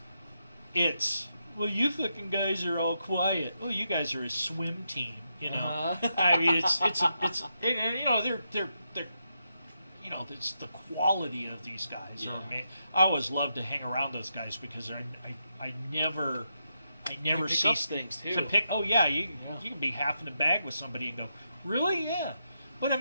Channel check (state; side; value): inverted; both; correlation -0.83